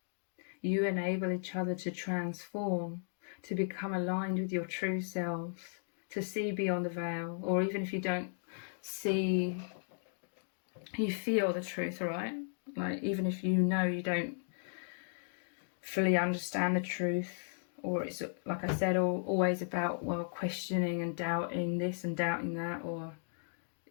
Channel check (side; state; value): right; silent; digital silence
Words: You enable each other to transform, to become aligned with your true selves, to see beyond the veil, or even if you don't see, you feel the truth, right? Like even if you know you don't fully understand the truth, or it's, like I said, always about, well, questioning and doubting this and doubting that, or